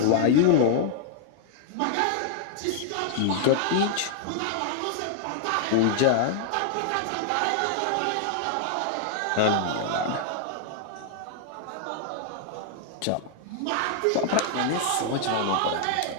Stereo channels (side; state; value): both; different; correlation -0.01